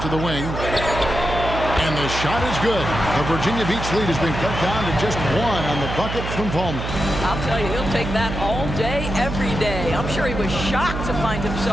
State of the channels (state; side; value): noise; right; hum, 5 dB below the sound